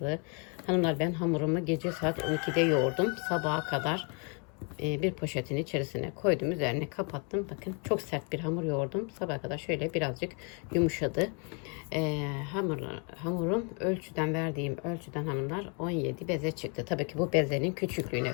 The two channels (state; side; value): quieter; right; 36.5 dB